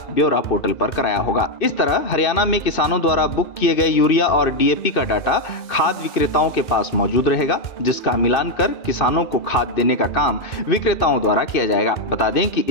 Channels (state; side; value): late; right; 2.6 ms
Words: ब्यौरा पोर्टल पर कराया होगा। इस तरह हरियाणा में किसानों द्वारा बुक किए गए यूरिया और डीएपी का डाटा खाद विक्रेताओं के पास मौजूद रहेगा, जिसका मिलान कर किसानों को खाद देने का काम विक्रेताओं द्वारा किया जाएगा। बता दें कि